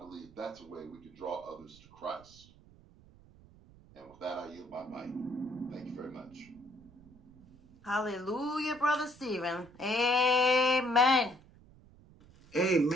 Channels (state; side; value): noise; right; rumble, 24 dB below the sound